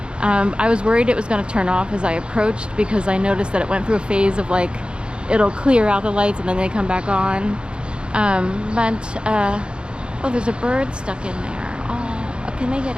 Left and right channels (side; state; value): left; late; 0.054 ms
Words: I was worried it was going to turn off as I approached, because I noticed that it went through a phase of like, it'll clear out the lights and then they come back on. Oh, there's a bird stuck in there. Oh, can they get